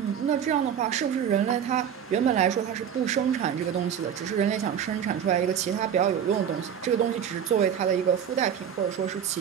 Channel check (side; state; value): left; quieter; 8.6 dB